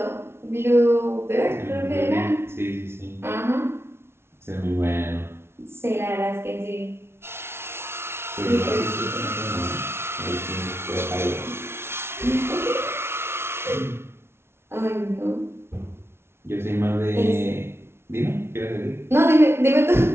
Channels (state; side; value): late; left; 0.12 ms